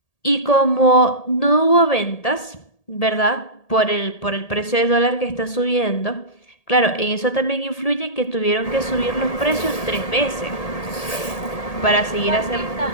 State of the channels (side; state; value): right; late; 1.8 ms